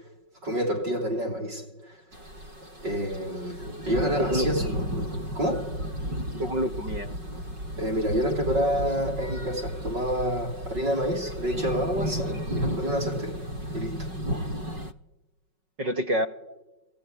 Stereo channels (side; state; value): left; late; 5.4 ms